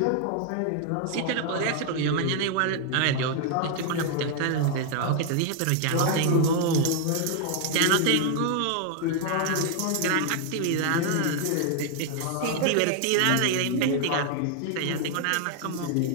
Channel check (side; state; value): both; different; correlation 0.00